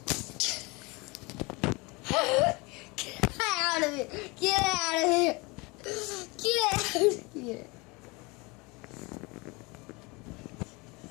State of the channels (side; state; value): right; quieter; 26.2 dB